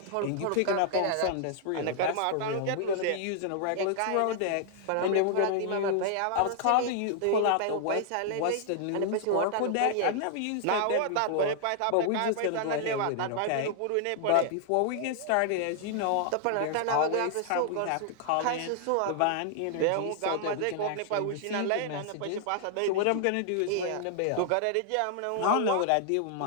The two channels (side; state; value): both; different; correlation 0.00